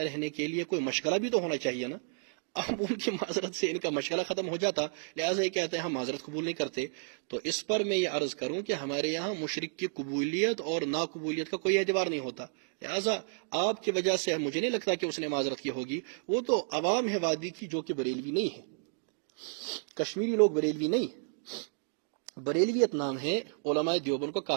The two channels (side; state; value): left; silent; digital silence